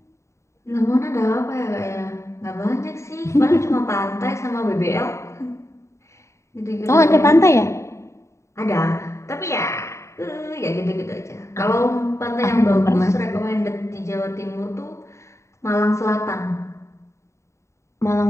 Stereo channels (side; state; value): right; late; 0.14 ms